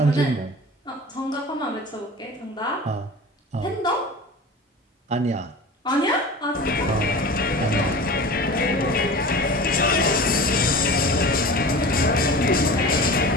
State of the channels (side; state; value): both; normal; correlation 0.36